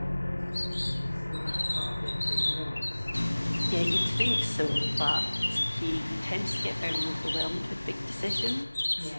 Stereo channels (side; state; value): both; inverted; correlation -1.00